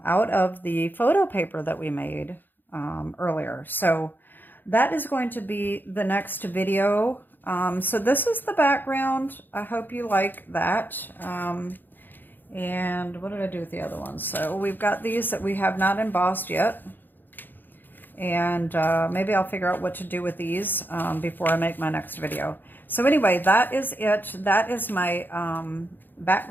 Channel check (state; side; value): late; right; 0.091 ms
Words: of the photo paper that we made earlier. So that is going to be the next video. So this is the background. I hope you like that. And what did I do with the other ones? So we've got these that we have not embossed yet. And maybe I'll figure out what to do with these before I make my next video. So anyway, that is it. That is my